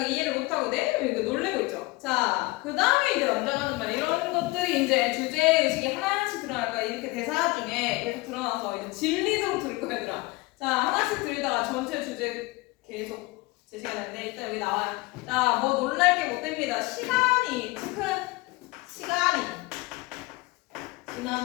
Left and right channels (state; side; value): quieter; right; 22.5 dB